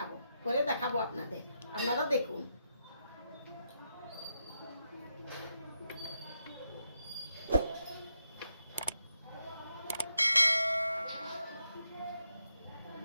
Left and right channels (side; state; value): both; inverted; correlation -0.83